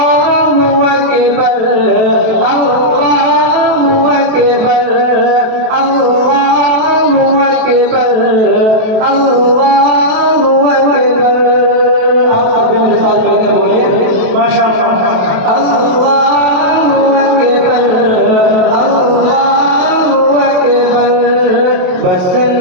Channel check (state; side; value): late; left; 28 ms